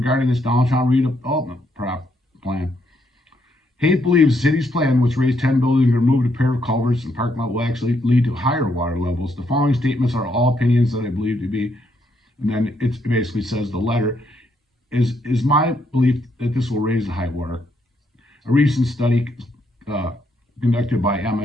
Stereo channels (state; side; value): normal; both; correlation 0.75